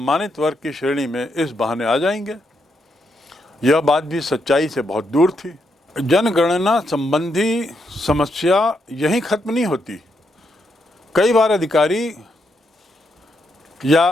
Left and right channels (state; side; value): normal; both; correlation 0.80